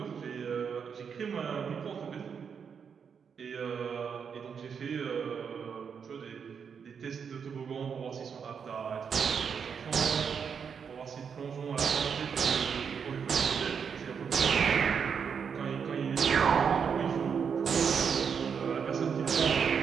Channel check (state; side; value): quieter; left; 6.7 dB